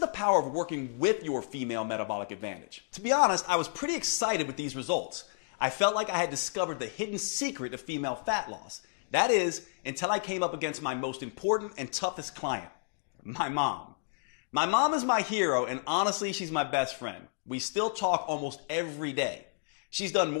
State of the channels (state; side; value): silent; right; digital silence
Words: power of working with your female metabolic advantage. To be honest, I was pretty excited with these results. I felt like I had discovered the hidden secret of female fat loss. That is, until I came up against my most important and toughest client, my mom. My mom is my hero, and honestly, she's my best friend. We still talk almost every day. She's done